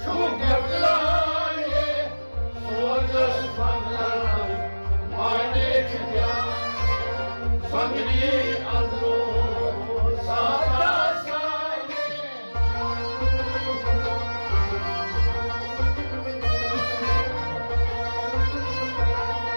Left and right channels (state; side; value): inverted; both; correlation -1.00